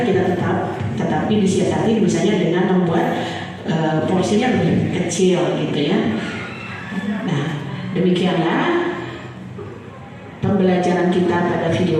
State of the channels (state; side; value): identical; both; correlation 1.00